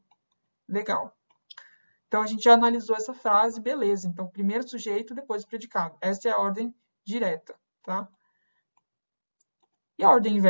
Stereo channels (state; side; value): inverted; both; correlation -1.00